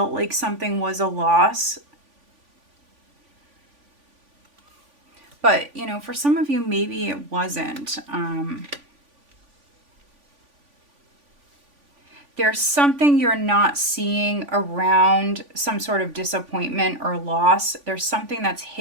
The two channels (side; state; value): left; late; 3.5 ms